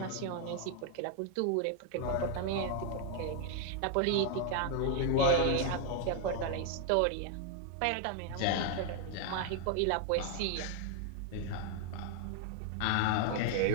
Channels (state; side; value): different; both; correlation 0.01